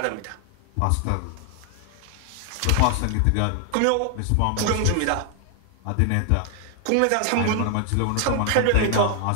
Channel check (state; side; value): different; both; correlation 0.00